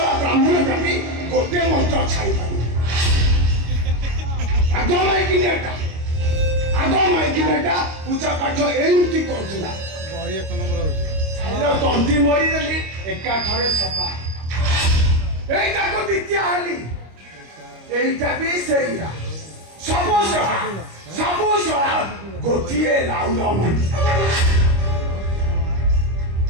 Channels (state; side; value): late; left; 25 ms